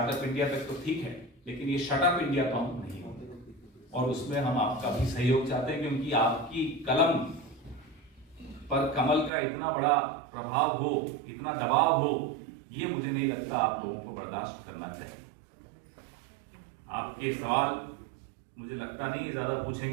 इंडिया तक तो ठीक है, लेकिन ये शटअप इंडिया तो हम नहीं होंगे, और उसमें हम आपका भी सहयोग चाहते हैं, क्योंकि आपकी कलम पर कमल का इतना बड़ा प्रभाव हो, इतना दबाव हो, ये मुझे नहीं लगता आप लोगों को बर्दाश्त करना चाहिए। आपके सवाल मुझे लगता नहीं ज्यादा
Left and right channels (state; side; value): drops out; left; at 9.3 s